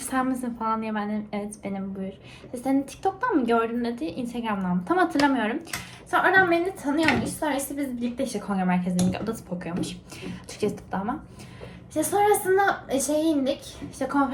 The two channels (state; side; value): identical; both; correlation 1.00